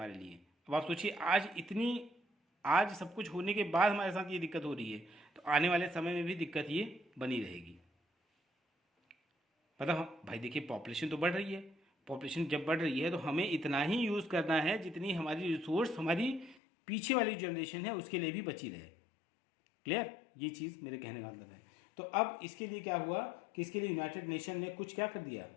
लिए, अब आप सोचिए, आज सब कुछ होने के बाद हमारे साथ ये दिक्कत हो रही है, तो आने वाले समय में भी दिक्कत ये बनी रहेगी। मतलब भाई देखिए, पॉपुलेशन तो बढ़ रही है, पॉपुलेशन जब बढ़ रही है तो हमें इतना ही यूज़ करना है जितनी हमारी रिसोर्स हमारी पीछे वाली जनरेशन है उसके लिए भी बची रहे। क्लियर, ये चीज़ मेरे कहने का मतलब है। तो अब इसके लिए क्या हुआ कि इसके लिए यूनाइटेड नेशन ने कुछ क्या कर दिया,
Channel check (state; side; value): drops out; right; at 16.6 s